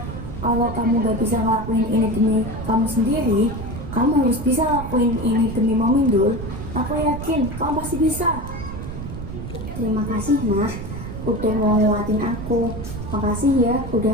Kalau kamu gak bisa ngelakuin ini demi kamu sendiri, kamu harus bisa ngelakuin ini demi Mami Dul. Aku yakin kamu pasti bisa. Terima kasih Nah, udah mau nguatin aku. Makasih ya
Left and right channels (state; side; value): noise; right; rumble, 8 dB below the sound